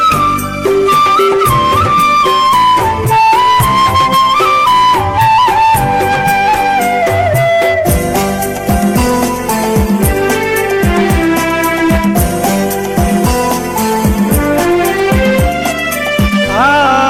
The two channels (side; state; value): both; identical; correlation 1.00